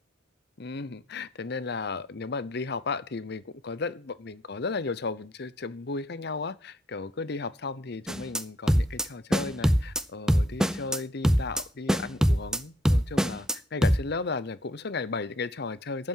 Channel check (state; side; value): normal; both; correlation 0.69